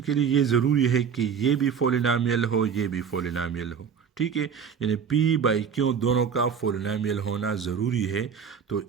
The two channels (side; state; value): left; quieter; 7.0 dB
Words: के लिए ये ज़रूरी है कि ये भी पोलिनोमियल हो ये भी पोलिनोमियल हो। ठीक है, यानी p/q दोनों का पोलिनोमियल होना ज़रूरी है, तो